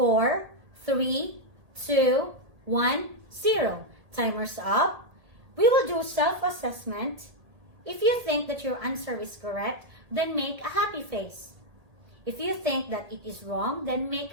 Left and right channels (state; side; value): late; left; 1.8 ms